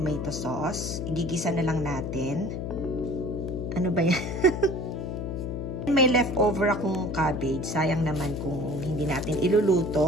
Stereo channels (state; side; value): noise; left; hum, 4 dB below the sound